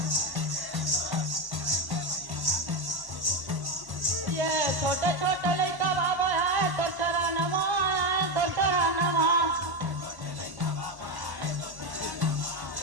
ये छोटे छोटे लइका बाबा है तो चरणवा है तो चरणवा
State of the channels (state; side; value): late; left; 1.1 ms